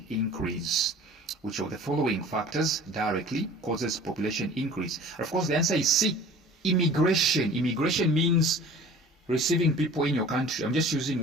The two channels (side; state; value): both; normal; correlation 0.45